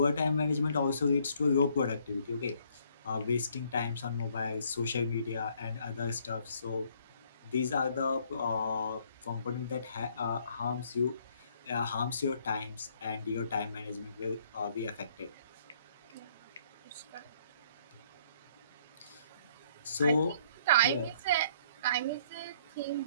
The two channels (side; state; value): both; inverted; correlation -0.64